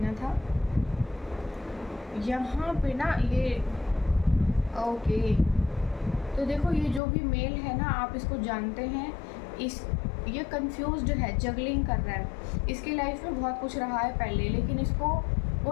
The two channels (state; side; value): drops out; right; at 7.0 s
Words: था। यहाँ पे ना ये ओके, तो देखो, ये जो भी मेल है ना, आप इसको जानते हैं, ये कंफ्यूज्ड है, जगलिंग कर रहा है। इसकी लाइफ में बहुत कुछ रहा है पहले, लेकिन इसको